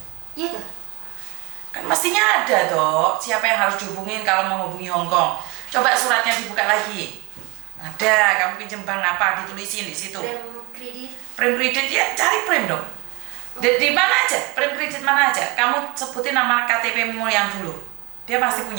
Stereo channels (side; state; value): left; quieter; 26.3 dB